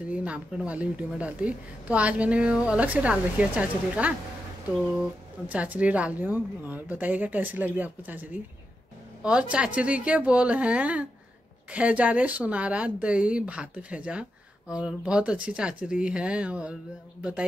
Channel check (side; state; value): both; normal; correlation 0.87